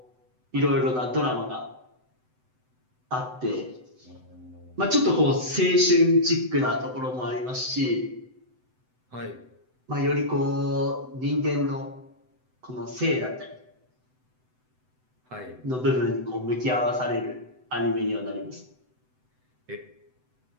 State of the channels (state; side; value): late; left; 7.9 ms